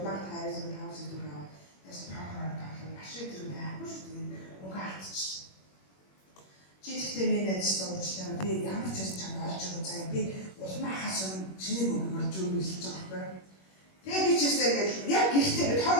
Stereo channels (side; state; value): right; late; 21 ms